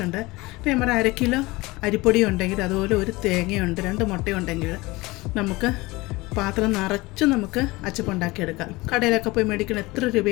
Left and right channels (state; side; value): quieter; right; 21.8 dB